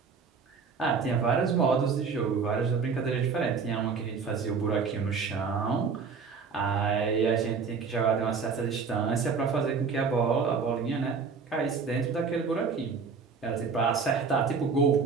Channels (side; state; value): left; quieter; 5.4 dB